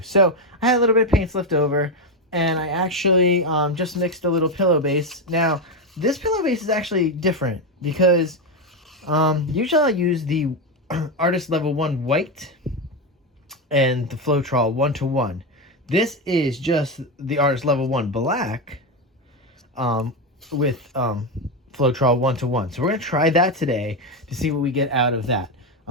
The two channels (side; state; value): both; normal; correlation 0.10